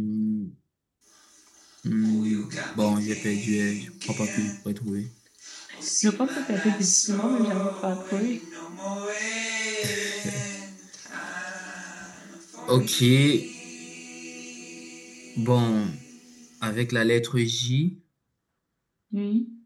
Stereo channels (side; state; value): both; identical; correlation 1.00